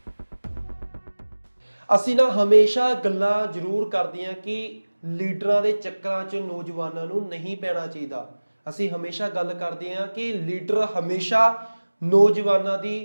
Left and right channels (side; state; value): both; inverted; correlation -1.00